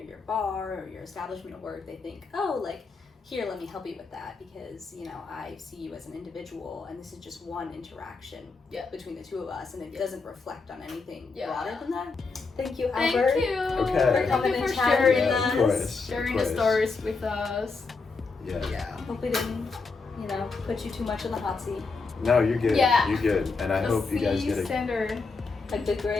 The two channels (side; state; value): right; quieter; 4.3 dB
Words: bar or your establishment of work, they think, oh, like, here, let me help you with that because, you know, I see you as an individual and this is just one interaction between the two of us and it doesn't reflect on anything broader than that. Thank you, Albert. Thank you. Okay. For coming and sharing chatting Of with us. course. Sharing the stories with us. Yeah. Hope we didn't, you know, put you too much in the hot seat. No, you're good. Yeah. You're good. And I hope you guys get standard. A good